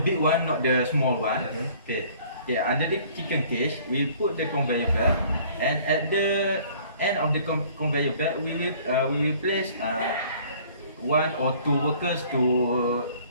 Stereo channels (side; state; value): both; inverted; correlation -0.54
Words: one, not the small one. Yes. Okay. Okay. Under the chicken cage, we put the conveyor belt, and at the end of the conveyor belt, we will place one or two workers to